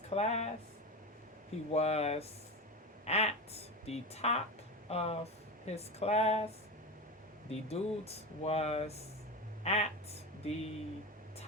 class. He was at the top of his class. The dude was at the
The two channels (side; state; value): both; normal; correlation 0.22